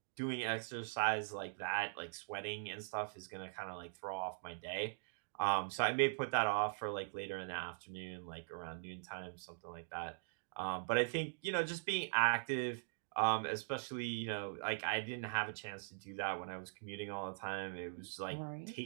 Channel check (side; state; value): left; silent; digital silence